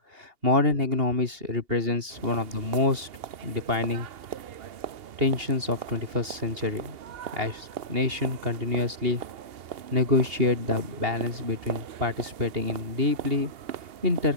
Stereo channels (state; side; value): late; left; 2.8 ms